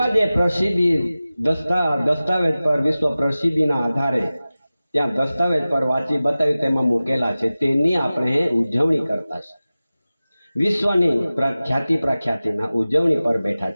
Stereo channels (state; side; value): inverted; both; correlation -0.96